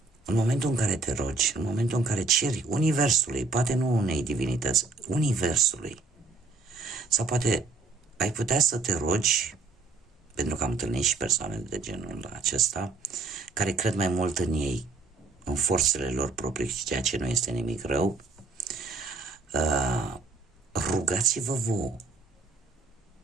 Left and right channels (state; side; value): quieter; left; 3.9 dB